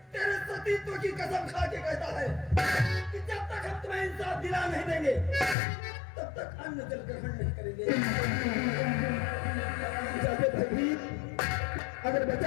तेरे सतीत्व की कसम खा के कहता है कि जब तक हम तुम्हें इंसाफ दिला नहीं देंगे तब तक अन्न जल ग्रहण नहीं करेंगे। जाके भैभीर, अगर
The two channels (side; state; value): right; drops out; at 5.6 s